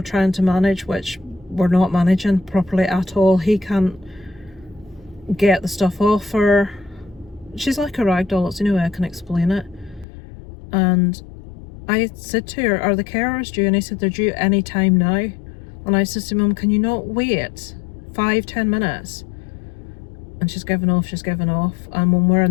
to manage, which we're not managing properly at all. He can't get the stuff off her. She's like a rag doll, it's the only way I can explain it. And I said to her, are the carers due? And he said they're due any time now. And I said to Mum, can you not wait 5-10 minutes? And she's given off. And when we're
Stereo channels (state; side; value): drops out; right; at 10.1 s